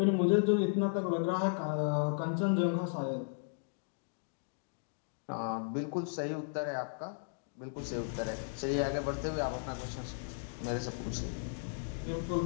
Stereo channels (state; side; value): silent; right; digital silence